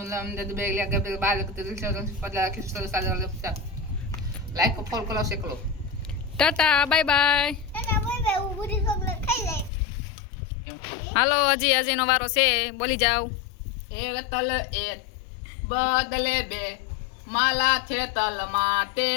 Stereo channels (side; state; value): right; drops out; at 9.7 s